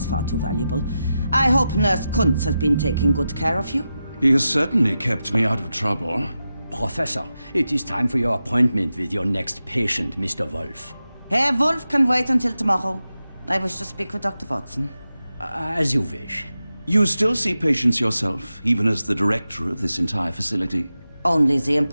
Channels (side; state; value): both; inverted; correlation -0.91